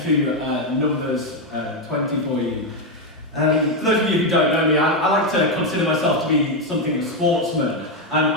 Numbers 20 for you. For those of you who don't know me, I like to consider myself to be something of a sportsman.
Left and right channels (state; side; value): normal; both; correlation 0.05